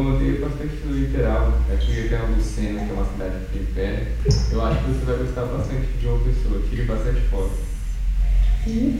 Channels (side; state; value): both; identical; correlation 1.00